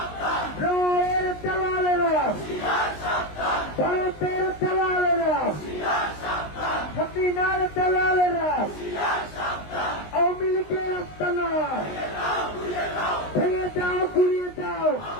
রায়ের দালালেরা, ভারতের দালালেরা, হাসিনার দালালেরা, আওয়ামী লীগের আস্তানা ভেঙে দাও, ঘুরিয়ে দাও,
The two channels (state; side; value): late; right; 19 ms